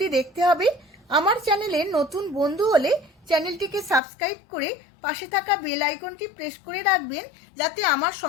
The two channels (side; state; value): right; drops out; at 4.0 s